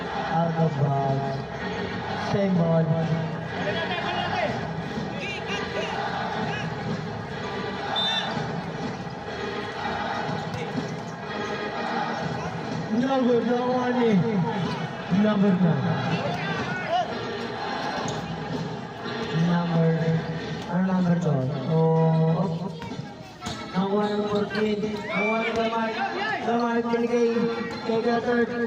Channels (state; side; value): identical; both; correlation 1.00